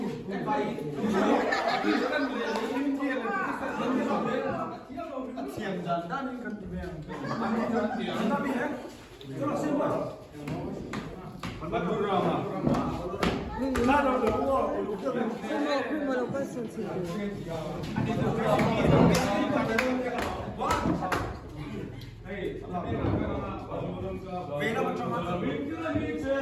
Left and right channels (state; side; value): identical; both; correlation 1.00